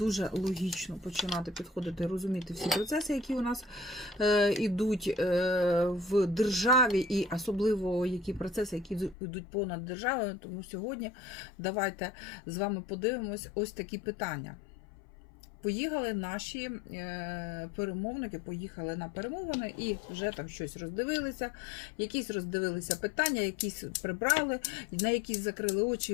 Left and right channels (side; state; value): right; drops out; at 9.2 s